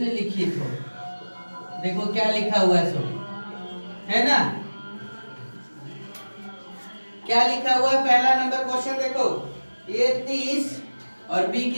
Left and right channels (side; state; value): both; inverted; correlation -1.00